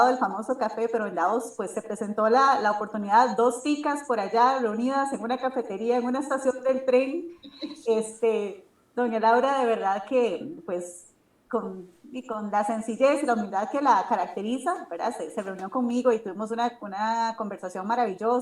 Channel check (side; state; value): both; identical; correlation 1.00